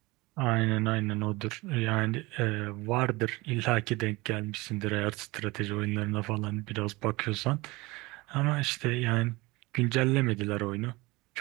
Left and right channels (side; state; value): left; quieter; 22.4 dB